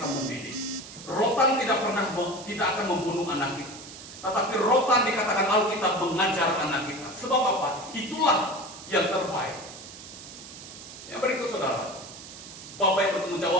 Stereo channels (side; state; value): right; noise; hiss, 14 dB below the sound